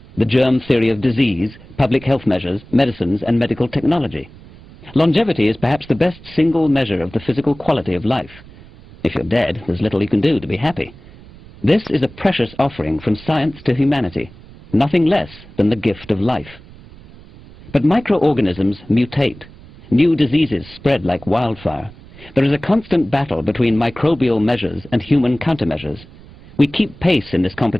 The germ theory of disease, public health measures, medicines, and medical technology. Longevity is perhaps the best single measure of the physical quality of life. If you're dead, there's little you can do to be happy. This is a precious offering from science to humanity, nothing less than the gift of life. But microorganisms mutate. New diseases spread like wildfire. There is a constant battle between microbial measures and human countermeasures. We keep pace in this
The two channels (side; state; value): right; noise; rumble, 21 dB below the sound